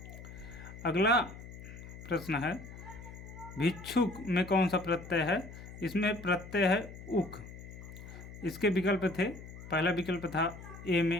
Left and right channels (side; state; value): left; noise; hum, 14 dB below the sound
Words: अगला प्रश्न है, भिक्षुक में कौन सा प्रत्यय है। इसमें प्रत्यय है उक। इसके विकल्प थे, पहला विकल्प था ए में